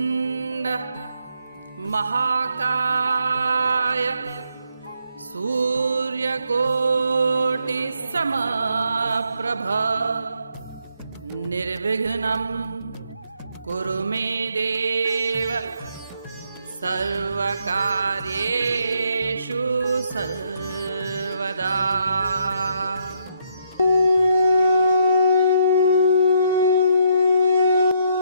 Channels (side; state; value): both; inverted; correlation -0.73